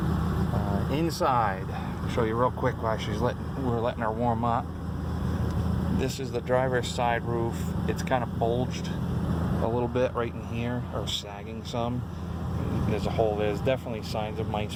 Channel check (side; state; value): both; identical; correlation 1.00